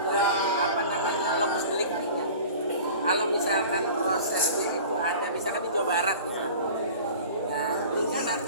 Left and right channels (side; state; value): both; inverted; correlation -0.41